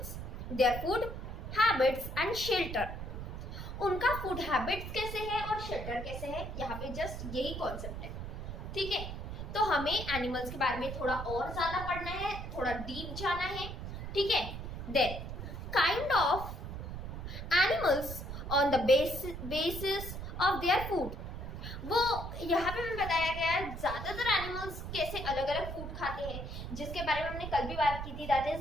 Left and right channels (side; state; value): right; noise; rumble, 7 dB below the sound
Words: their food habits and shelter. उनका फूड हैबिट्स कैसे है और शेल्टर कैसे है, यहाँ पे जस्ट यही कॉन्सेप्ट है। ठीक है, तो हमें एनिमल्स के बारे में थोड़ा और ज्यादा पढ़ना है, थोड़ा डीप जाना है। ठीक है, then kind of animals on the basis of their food. वो यहाँ पे हमें बताया गया है ज्यादातर एनिमल्स कैसे अलग अलग फूड खाते हैं, जिसके बारे में हमने कल भी बात की थी। दैट